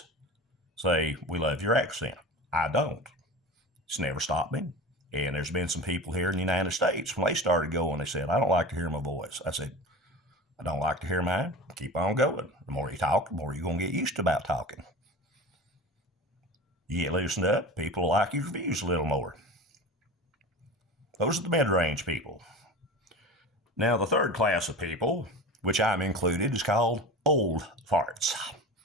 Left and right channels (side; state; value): both; normal; correlation 0.32